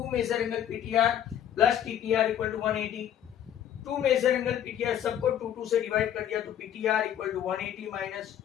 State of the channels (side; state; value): right; quieter; 10.3 dB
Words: measure angle PTR plus TPR equal to 180। 2 measure angle PTR सबको 2 से डिवाइड कर दिया, तो PTR equal to 180 minus